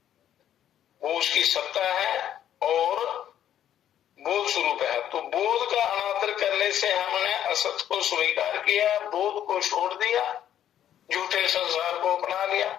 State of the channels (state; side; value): quieter; right; 10.7 dB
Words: वो उसकी सत्ता है और बोध स्वरूप है। तो बोध का अनादर करने से हमने असत को स्वीकार किया, बोध को छोड़ दिया, झूठे संसार को अपना लिया,